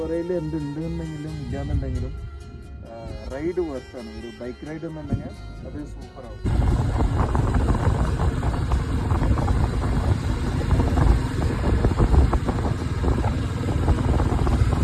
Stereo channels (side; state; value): both; identical; correlation 1.00